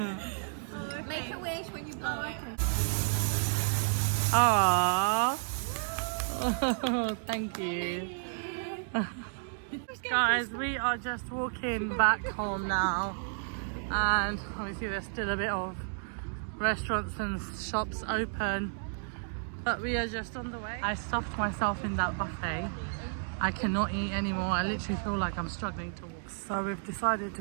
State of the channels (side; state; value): left; silent; digital silence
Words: it? Make a wish when you blow it. Aww. Oh, thank you. Guys, we are just walking back home now. And obviously there's still a bit of restaurants and shops open. But we are just on the way. I stuffed myself in that buffet. I cannot eat anymore. I literally feel like I'm struggling to walk. So we've decided to